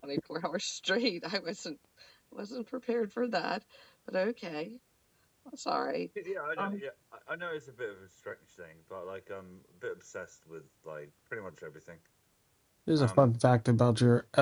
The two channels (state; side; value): identical; both; correlation 1.00